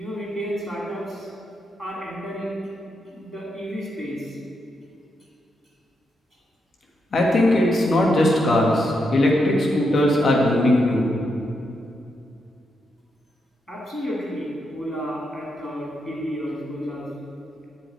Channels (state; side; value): normal; both; correlation 0.82